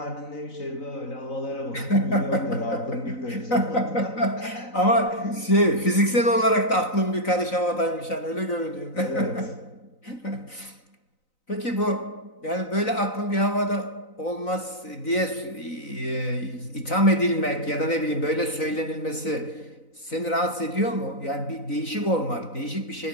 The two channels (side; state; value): right; late; 3.9 ms